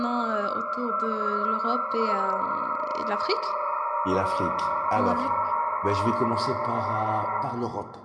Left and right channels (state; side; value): identical; both; correlation 1.00